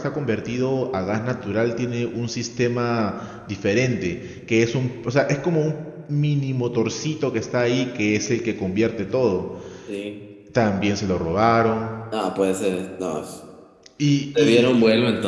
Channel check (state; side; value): identical; both; correlation 1.00